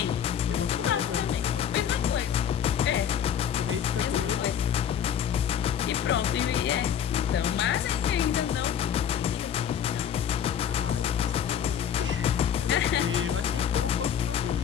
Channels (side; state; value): right; quieter; 9.0 dB